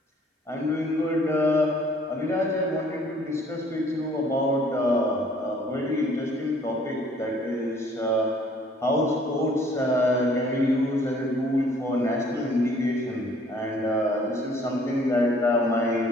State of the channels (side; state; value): both; normal; correlation 0.58